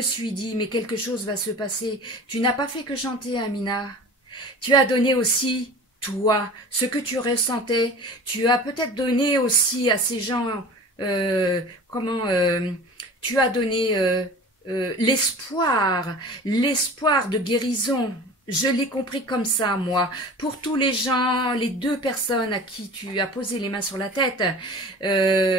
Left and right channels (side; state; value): both; normal; correlation 0.39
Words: suis dit mais quelque chose va se passer. Tu n'as pas fait que chanter, Amina. Tu as donné aussi toi ce que tu ressentais. Tu as peut-être donné aussi à ces gens tu as donné l'espoir de guérison. Je l'ai compris comme ça, moi. Pour tous les gens, les deux personnes à qui tu as posé les mains sur la tête,